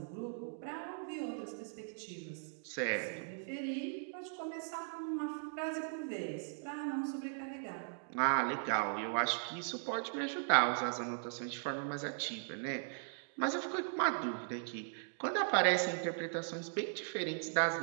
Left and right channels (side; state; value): left; silent; digital silence